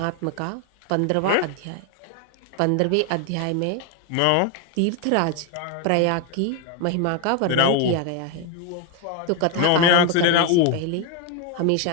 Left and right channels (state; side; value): different; both; correlation 0.01